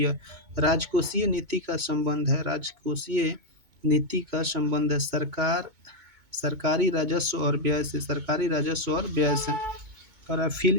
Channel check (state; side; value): late; left; 2.2 ms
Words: राजकोषीय नीति का संबंध है, राजकोषीय नीति का संबंध है सरकार, सरकारी राजस्व और व्यय से, सरकारी राजस्व और व्यय से। और fill